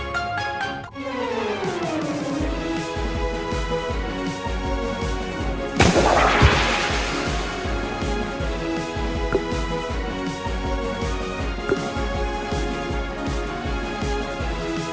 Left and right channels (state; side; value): identical; both; correlation 1.00